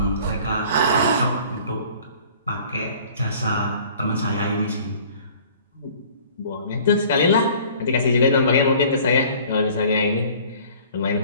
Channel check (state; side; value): inverted; both; correlation -0.50